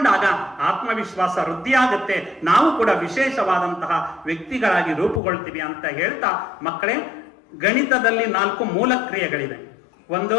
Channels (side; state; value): right; drops out; at 5.2 s